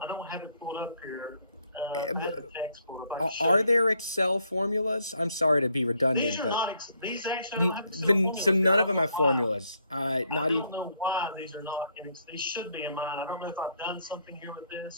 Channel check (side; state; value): both; inverted; correlation -0.70